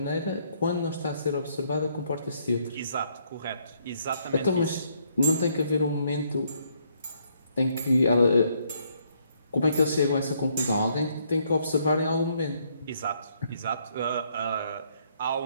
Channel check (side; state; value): both; inverted; correlation -0.70